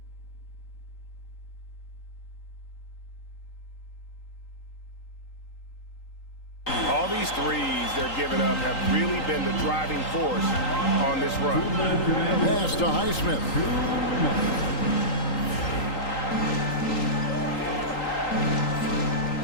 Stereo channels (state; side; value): late; right; 3.8 ms